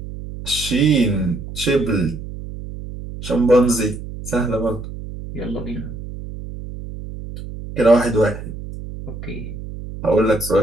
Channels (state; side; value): noise; right; hum, 10 dB below the sound